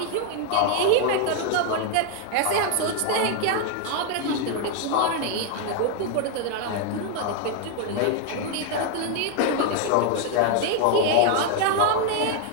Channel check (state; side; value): different; both; correlation 0.00